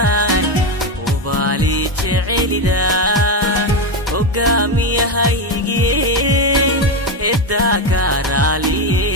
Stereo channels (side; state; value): both; normal; correlation 0.11